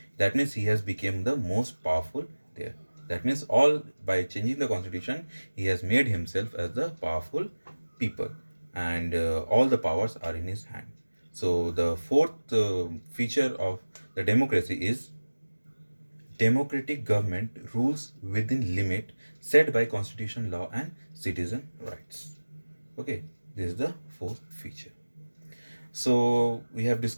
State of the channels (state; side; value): inverted; both; correlation -1.00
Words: That means he has become the most powerful there. That means all by changing the constitution, he has made himself as the powerful people, and all the powers are in his hand. So the fourth feature of the democracy is democratic government rules within limit set by constitution, law, and citizen rights. Okay, this is the fourth feature. So we have